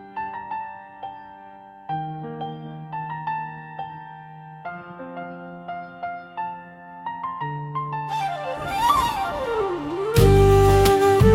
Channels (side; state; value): both; identical; correlation 1.00